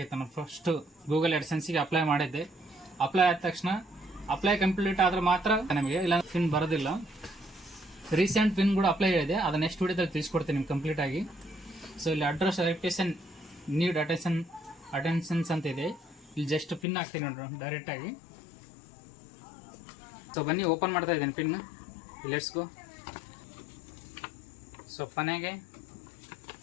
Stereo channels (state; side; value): drops out; right; at 16.9 s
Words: ನಾನು ಫಸ್ಟು ಗೂಗಲ್ AdSenseಗೆ ಅಪ್ಲೈ ಮಾಡಿದ್ದೆ. ಅಪ್ಲೈ ಆದ ತಕ್ಷಣ ಅಪ್ಲೈ ಕಂಪ್ಲೀಟ್ ಆದರೆ ಮಾತ್ರ ನಮಗೆ, ಇಲ್ಲ ಪಿನ್ ಬರೋದಿಲ್ಲ. ರೀಸೆಂಟ್ ಪಿನ್ ಕೂಡ ಅಪ್ಲೈ ಇದೆ, ಅದು ನೆಕ್ಸ್ಟ್ ವಿಡಿಯೋದಲ್ಲಿ ತಿಳಿಸ್ಕೊಡ್ತೀನಿ ನಿಮ್ಗೆ ಕಂಪ್ಲೀಟಾಗಿ. ಸೊ ಇಲ್ಲಿ ಅಡ್ರೆಸ್ ವೆರಿಫಿಕೇಶನ್ ನೀಡ್ ಅಟೆನ್ಷನ್ಸ್ ಅಂತ ಇದೆ. ಇಲ್ಲಿ ಜಸ್ಟ್ ಪಿನ್ ಹಾಕ್ತೀನಿ ನೋಡ್ರಿ ಡೈರೆಕ್ಟಾಗಿ. ಸೊ ಬನ್ನಿ ಓಪನ್ ಮಾಡ್ತಾ ಇದ್ದೀನಿ ಪಿನ್. Let's go. ಸೊ ಕೊನೆಗೆ